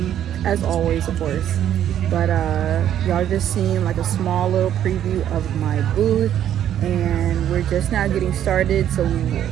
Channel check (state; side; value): quieter; left; 10.6 dB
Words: as always, of course. But y'all just seen like a small little preview of my booth, and we're just now getting started. So